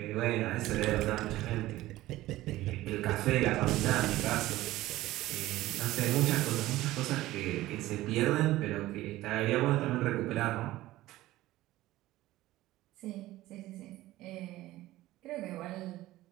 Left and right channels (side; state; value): left; quieter; 16.5 dB